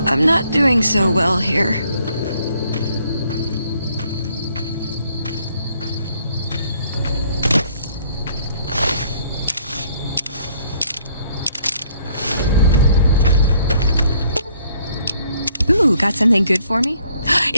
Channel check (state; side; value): inverted; both; correlation -0.65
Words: I'm not doing so well here. Ooh, got something good for me?